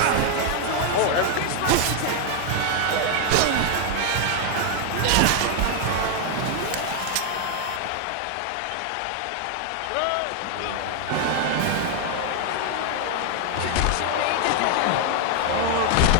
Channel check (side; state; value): both; different; correlation 0.00